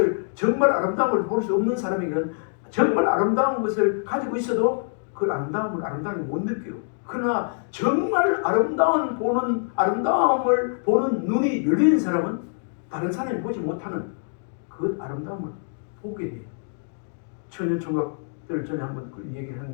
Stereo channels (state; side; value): silent; right; 62 dB below the other